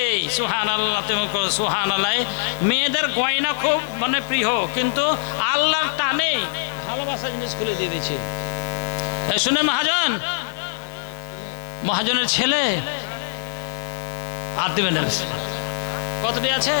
সুবহানাল্লাহ। তুমি সুবহানাল্লাহ। মেয়েদের গয়না খুব মানে প্রিয়, কিন্তু আল্লাহর টানে ভালোবাসা জিনিস খুলে দিয়ে দিয়েছে। শুনে মহাজনের ছেলে আর দিবেন কতটি আছে?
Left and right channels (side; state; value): right; silent; 64 dB below the other